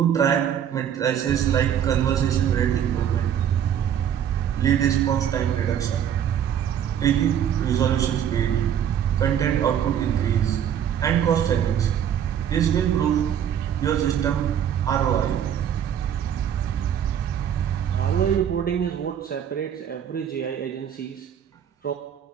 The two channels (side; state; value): left; quieter; 9.3 dB